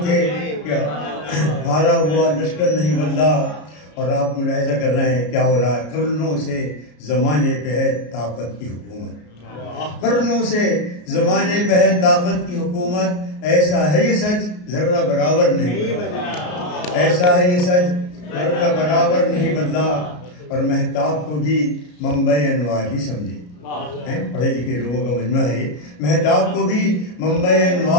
تھے کہ ہارا ہوا لشکر نہیں بدلا. اور آپ ملاحظہ کر رہے ہیں کیا ہو رہا ہے. قرنوں سے زمانے پہ ہے طاقت کی حکومت، قرنوں سے زمانے پہ ہے طاقت کی حکومت. ایسا ہے یہ سچ ذرہ برابر نہیں بدلا، ایسا ہے یہ سچ ذرہ برابر نہیں بدلا. اور مہتاب کو بھی منبع انوار ہی سمجھے، پڑھے لکھے لوگوں کا مجمع ہے یہ. مہتاب کو بھی منبع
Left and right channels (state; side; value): late; right; 33 ms